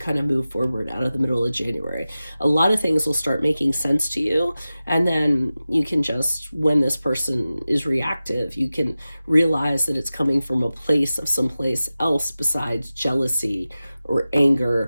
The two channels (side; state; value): both; inverted; correlation -0.95